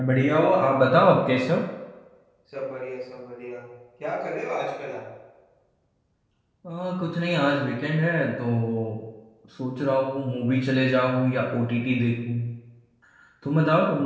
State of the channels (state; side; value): identical; both; correlation 1.00